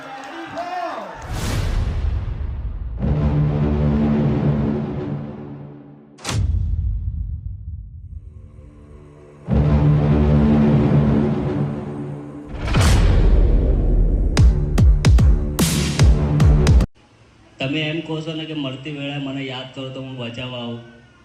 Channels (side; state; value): both; identical; correlation 1.00